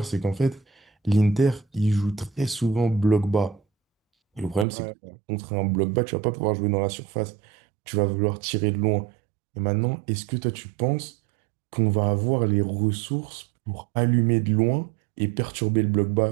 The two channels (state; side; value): drops out; left; at 4.7 s